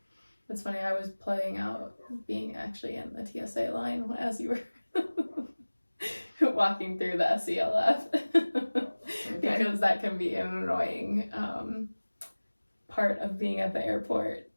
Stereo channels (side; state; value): both; inverted; correlation -1.00